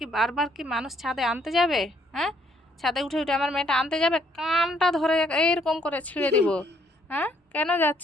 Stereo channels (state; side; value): normal; both; correlation 0.67